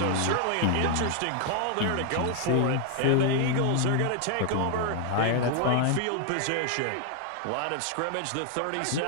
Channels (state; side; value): different; both; correlation 0.00